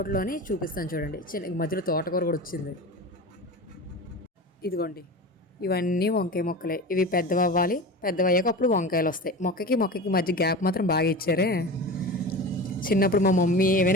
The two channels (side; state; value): both; normal; correlation 0.30